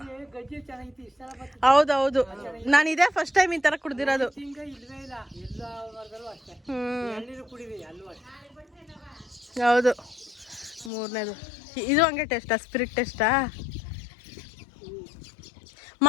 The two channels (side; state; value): right; drops out; at 10.9 s